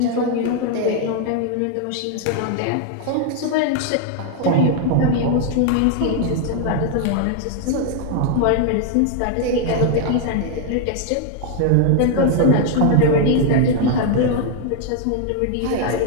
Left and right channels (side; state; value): both; different; correlation 0.00